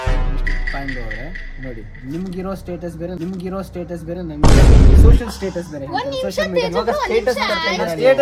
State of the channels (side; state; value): both; identical; correlation 1.00